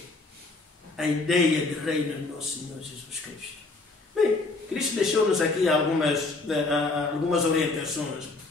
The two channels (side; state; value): right; quieter; 3.4 dB